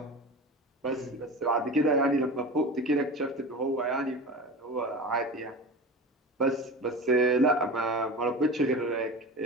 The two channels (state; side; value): normal; both; correlation 0.31